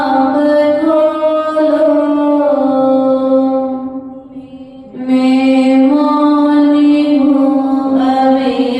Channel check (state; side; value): identical; both; correlation 1.00